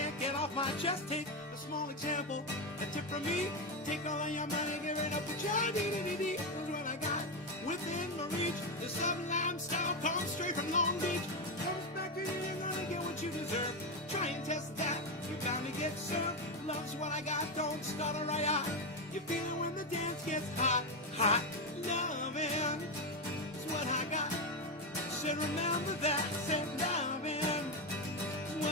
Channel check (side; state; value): both; normal; correlation 0.10